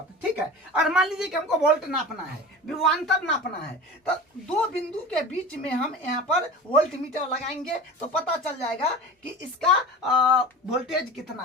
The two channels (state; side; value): normal; both; correlation 0.33